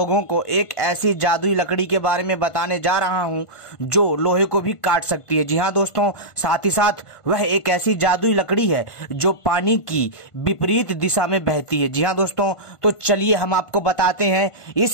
को एक ऐसी जादुई लकड़ी के बारे में बताने जा रहा हूं जो लोहे को भी काट सकती है। जी हां दोस्तों, साथ ही साथ वह एक ऐसी जादुई लकड़ी है जो पानी की विपरीत दिशा में बहती है। जी हां दोस्तों, तो चलिए हम आपको बताते हैं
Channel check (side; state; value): right; late; 1.5 ms